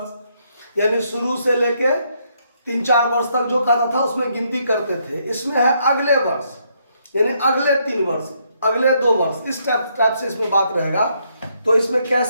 यानी शुरू से लेके 3-4 वर्ष तक जो खाता था उसमें गिनती करते थे। इसमें है अगले वर्ष, यानी अगले 3 वर्ष, अगले 2 वर्ष, इस टाइप से इसमें बात रहेगा। तो इसमें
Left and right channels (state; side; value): inverted; both; correlation -0.74